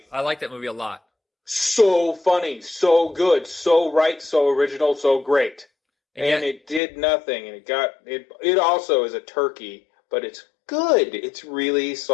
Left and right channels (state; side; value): drops out; right; at 6.8 s